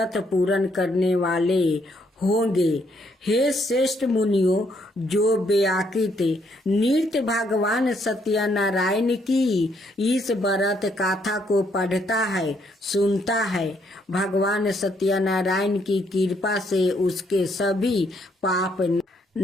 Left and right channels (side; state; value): both; normal; correlation 0.71